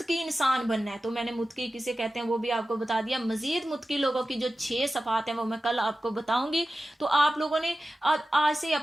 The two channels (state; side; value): normal; both; correlation 0.94